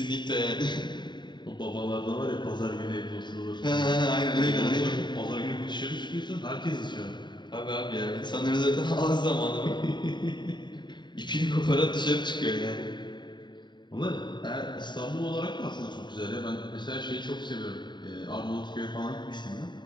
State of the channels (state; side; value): late; right; 0.22 ms